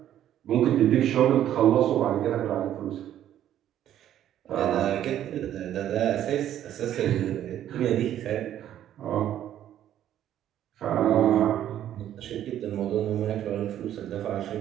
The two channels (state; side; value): quieter; left; 11.4 dB